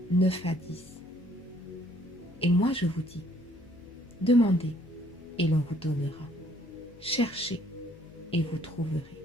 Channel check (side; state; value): left; noise; hum, 22 dB below the sound